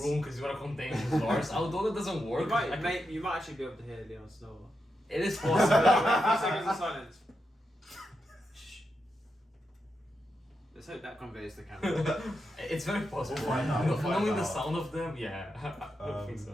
room because you wanna contain his doors. Although that doesn't work. You might actually be able to hear Leon snore. It is A possible. few seconds of silence. Shh. Let's hope that conveys the camera. It's very possible. We'll find out, we'll find Knowing the out. sound of them, yeah. I don't think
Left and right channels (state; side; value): normal; both; correlation 0.86